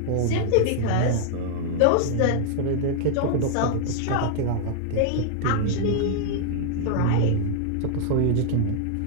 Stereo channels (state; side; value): different; both; correlation 0.00